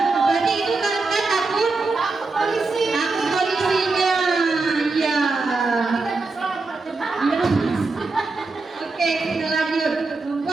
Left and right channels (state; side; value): quieter; left; 3.7 dB